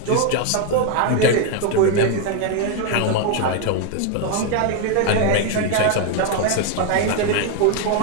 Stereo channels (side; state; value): both; different; correlation 0.01